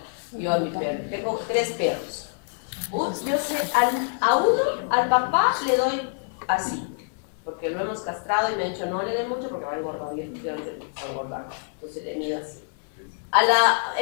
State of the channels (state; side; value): silent; right; 61 dB below the other